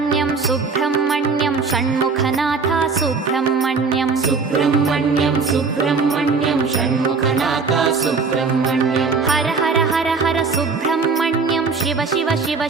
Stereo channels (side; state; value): left; quieter; 4.8 dB